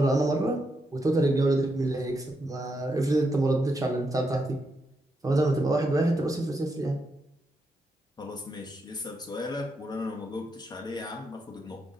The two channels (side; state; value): both; normal; correlation 0.82